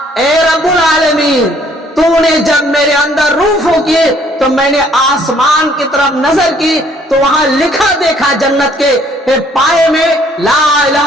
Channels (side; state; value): both; normal; correlation 0.62